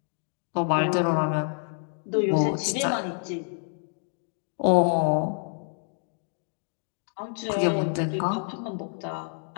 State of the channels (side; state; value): right; silent; 59 dB below the other